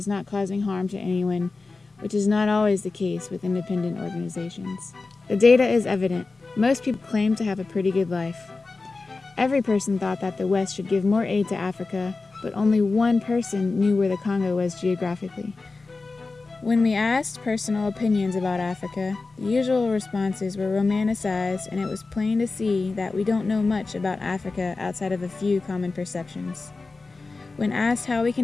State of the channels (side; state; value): right; quieter; 3.8 dB